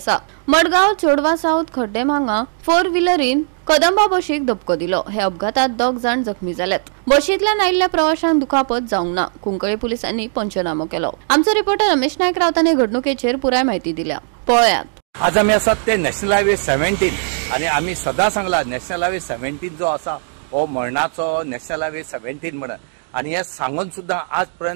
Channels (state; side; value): silent; left; digital silence